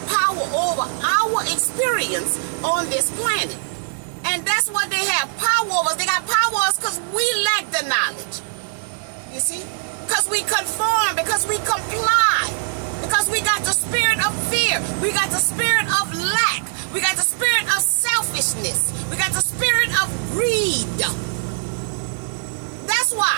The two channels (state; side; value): silent; left; 65 dB below the other